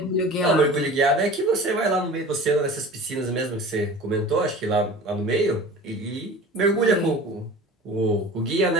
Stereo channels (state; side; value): normal; both; correlation 0.39